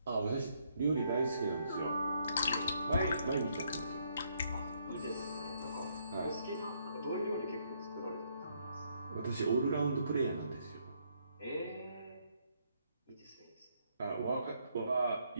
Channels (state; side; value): inverted; both; correlation -0.72